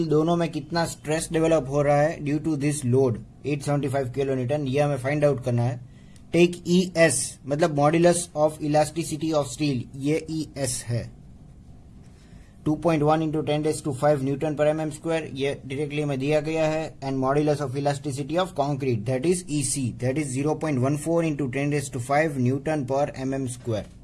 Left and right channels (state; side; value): identical; both; correlation 1.00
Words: दोनों में कितना स्ट्रेस डेवलप हो रहा है due to this load 875 kilonewton, ये हमें फाइंड आउट करना है. टेक ES मतलब modulus of elasticity of steel, ये ES है 2.1 इंटू 10⁵ न्यूटन पर mm स्क्वायर. ये डायरेक्टली में दिया गया है. And modulus of elasticity of concrete, that is EC, that is 0.14 into 10⁵ newton पर mm स्क्वायर.